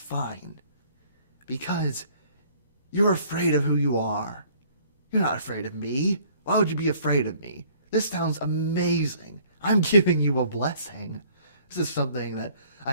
Because you're afraid of who you are. You're not afraid of me. Why would you be afraid of me? This sounds amazing. I'm giving you a blessing. This is something that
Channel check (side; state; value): both; inverted; correlation -0.57